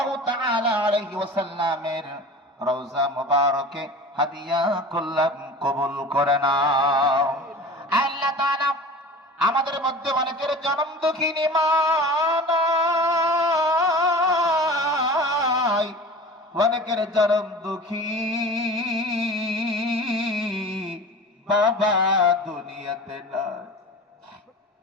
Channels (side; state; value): both; normal; correlation 0.37